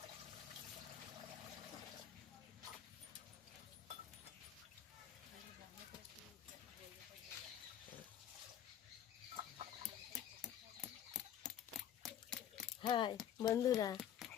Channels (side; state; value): right; quieter; 10.2 dB